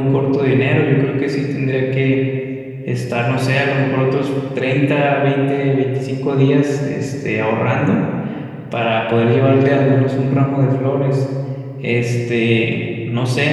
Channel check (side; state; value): both; identical; correlation 1.00